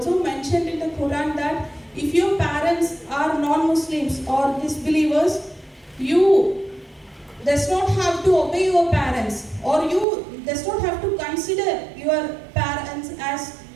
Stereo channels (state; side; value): drops out; left; at 10.1 s